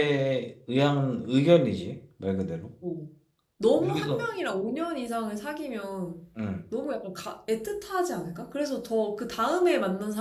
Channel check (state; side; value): identical; both; correlation 1.00